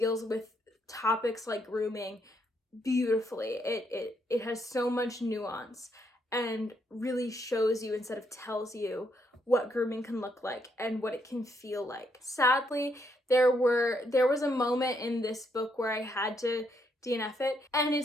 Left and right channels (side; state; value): both; normal; correlation 0.75